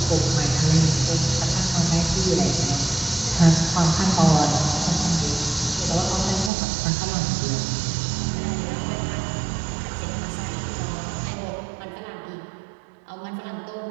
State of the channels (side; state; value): left; drops out; at 6.5 s